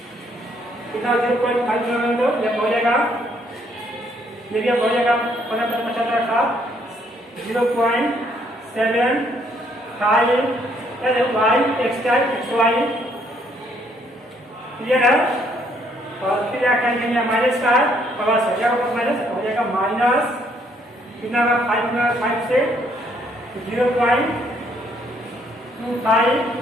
कितना 0.5 दो यह हो जाएगा, ये भी हो जाएगा 15×75 का 0.75 y x y, क्लियर है। और फिर क्या करेंगे माइनस का प्लस हो जाएगा, माइनस हो जाएगा माइनस कितना होगा 5 से 0.25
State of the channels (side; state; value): both; normal; correlation 0.68